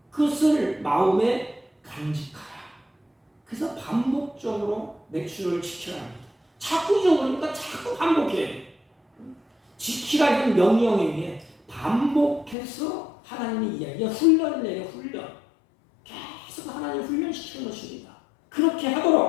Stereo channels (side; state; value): right; drops out; at 12.6 s